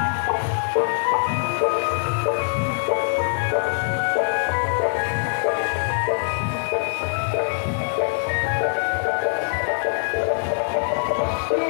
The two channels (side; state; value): right; silent; 62 dB below the other